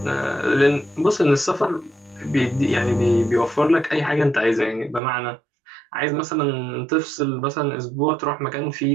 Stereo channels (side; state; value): left; drops out; at 5.0 s